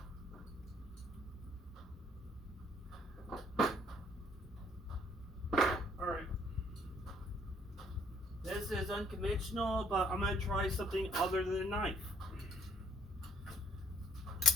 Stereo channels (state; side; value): normal; both; correlation 0.63